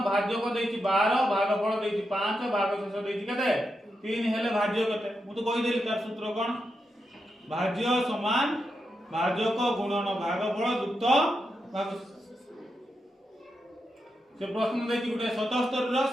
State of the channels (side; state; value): both; normal; correlation 0.86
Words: ভাজ্যক দেইছি 12, ভাগফল দেইছি 5, ভাগশেষ দেইছি কেতে 3 হেলে ভাজ্য কেতে মু তো কই দেলি তার সূত্র কোন ভাজ্য সমান ভাজক গুণন ভাগফল যুক্ত ভাগশেষ। से प्रश्न देती गुटे 77 रो